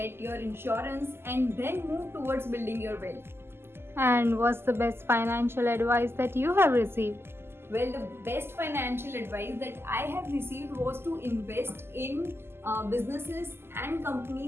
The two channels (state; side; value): late; left; 0.12 ms